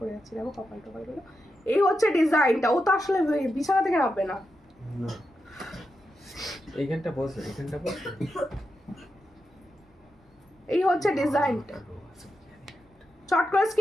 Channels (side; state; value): both; normal; correlation 0.87